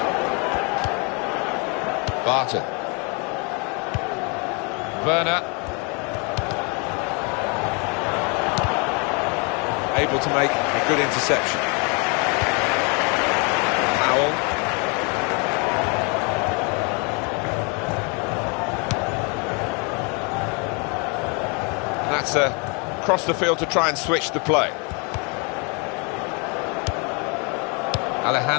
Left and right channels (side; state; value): right; quieter; 33.1 dB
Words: Barton. Werner. Able to make a good interception. Powell. And that's across the field to try and switch the play.